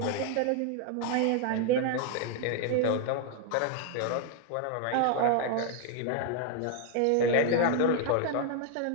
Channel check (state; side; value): different; both; correlation 0.00